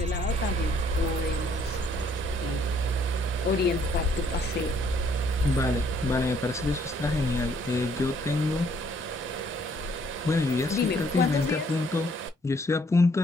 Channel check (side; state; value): both; normal; correlation 0.65